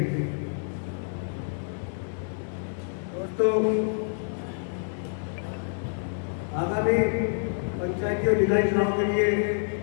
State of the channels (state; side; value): silent; right; 56 dB below the other